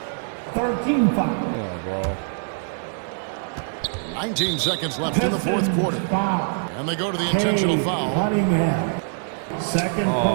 13 foul. Yeah, bro. 19 seconds left in the fourth quarter. And they go to the intentional foul. Cunningham. Second Oh,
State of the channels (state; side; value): silent; left; digital silence